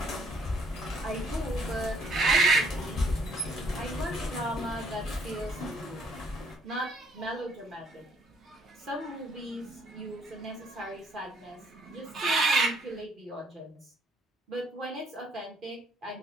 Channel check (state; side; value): normal; both; correlation 0.66